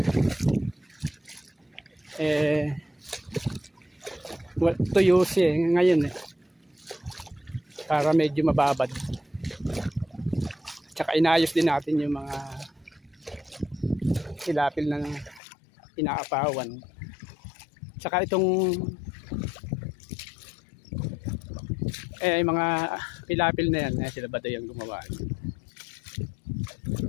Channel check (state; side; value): drops out; right; at 15.4 s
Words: Tuyo siya ngayon para medyo mababad. Tsaka inayos din natin yung mga hilapil na inaapawan. Tsaka itong mga hilapil na yan sila ba yung gumawa.